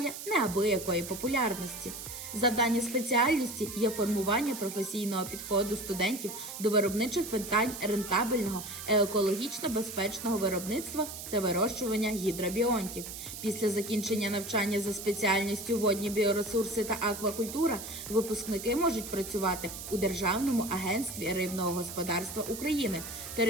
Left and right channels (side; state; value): right; noise; hiss, 9 dB below the sound